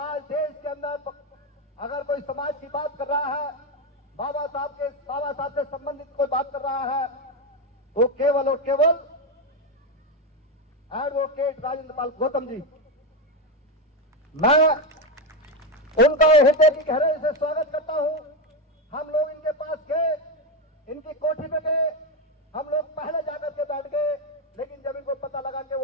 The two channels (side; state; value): both; normal; correlation 0.10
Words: देश के अंदर अगर कोई समाज की बात कर रहा है, बाबा साहब से संबंधित कोई बात कर रहा है, वो केवल और केवल एडवोकेट राजेंद्र पाल गौतम जी। मैं उनका हृदय की गहराई से स्वागत करता हूं। हम लोग इनके पास गए, इनकी कोठी में गए, हम लोग पहले जाकर के बैठ गए, लेकिन जब इनको पता लगा कि